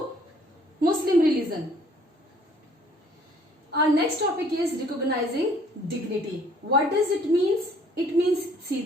Muslim religion. Our next topic is recognizing dignity. What does it mean? It means, see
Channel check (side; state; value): both; normal; correlation 0.59